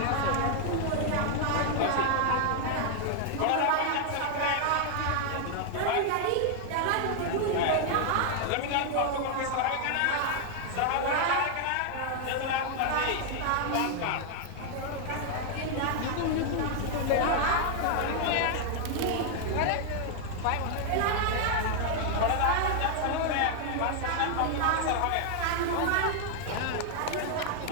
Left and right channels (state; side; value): different; both; correlation 0.00